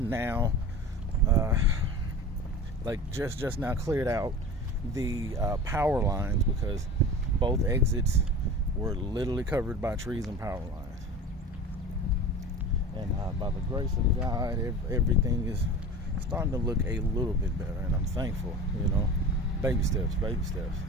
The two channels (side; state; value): both; normal; correlation 0.35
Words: just now cleared out the power lines because both exits were literally covered by trees and power lines. And by the grace of God, everything is starting to look a little bit better, and I'm thankful. Baby steps, baby steps.